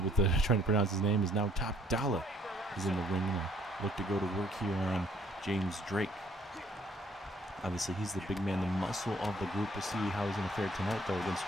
with trying to pronounce his name. Is now Top Dollar is in the ring. Look to go to work here on James Drake. Obviously, he's the big man, the muscle of the group. We'll see how he's going to fare tonight, though,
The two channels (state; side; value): normal; both; correlation 0.62